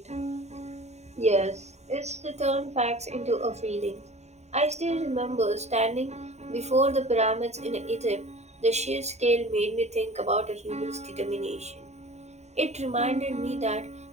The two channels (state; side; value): late; left; 0.32 ms